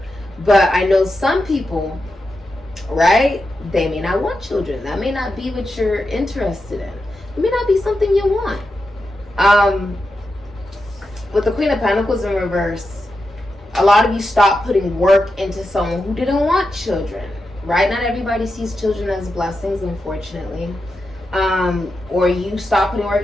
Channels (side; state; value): both; normal; correlation 0.88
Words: But I know some people, right? They may not want children. That may not be what you're interested in. It may not be something you want. With the Queen of Pentacles in reverse, a lot of you stop putting work into someone who didn't want children, right? Not everybody sees children as blessings, unfortunately. Or you stop putting work